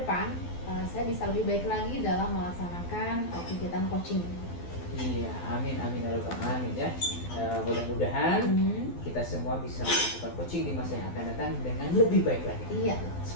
saya bisa lebih baik lagi dalam melaksanakan kegiatan coaching. Iya, amin amin ya rabbal alamin ya. Mudah-mudahan kita semua bisa melakukan coaching di masa yang akan datang dengan lebih baik lagi. Iya,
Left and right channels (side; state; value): right; late; 12 ms